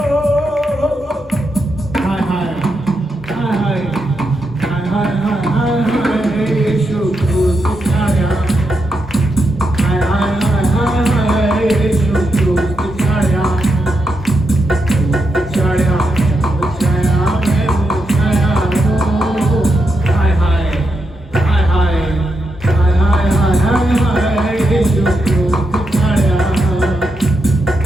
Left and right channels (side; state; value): both; normal; correlation 0.84